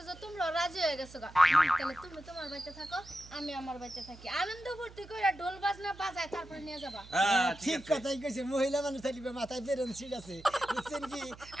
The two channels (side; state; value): right; noise; hum, 19 dB below the sound